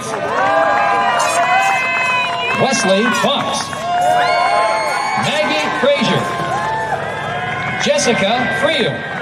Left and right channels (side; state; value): both; identical; correlation 1.00